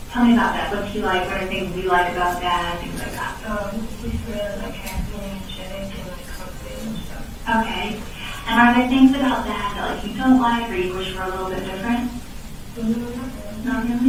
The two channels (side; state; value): both; identical; correlation 1.00